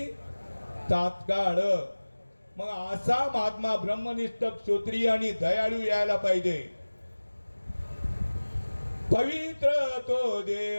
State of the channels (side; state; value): both; inverted; correlation -1.00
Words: तात्काळ. मग असा महात्मा ब्रह्मनिष्ठ क्षत्रिय आणि दयाळू यायला पाहिजे. पवित्र तो